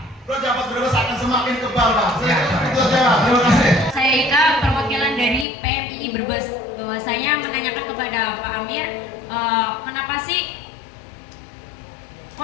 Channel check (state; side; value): drops out; right; at 5.5 s